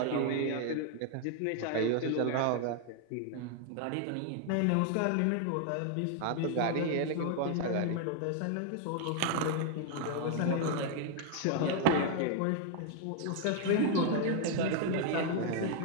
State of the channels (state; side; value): different; both; correlation 0.00